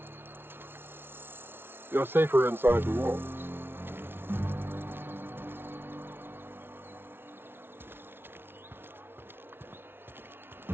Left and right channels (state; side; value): late; left; 0.11 ms